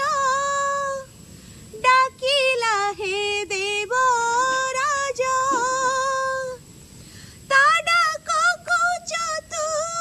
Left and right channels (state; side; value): identical; both; correlation 1.00